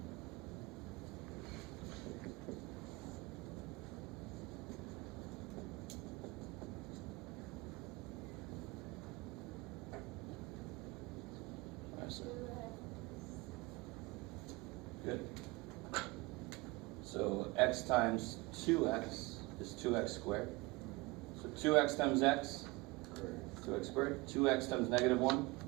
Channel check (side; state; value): left; quieter; 23.6 dB